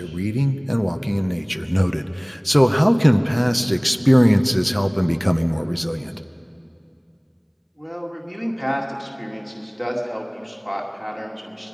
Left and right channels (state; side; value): identical; both; correlation 1.00